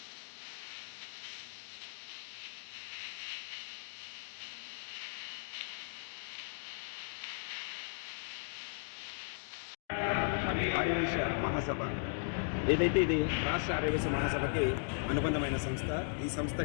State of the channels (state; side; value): silent; right; digital silence